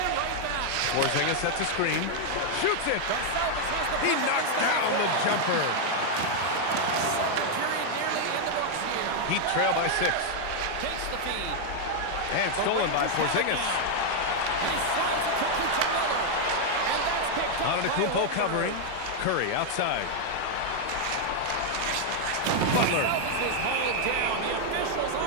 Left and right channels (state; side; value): different; both; correlation 0.00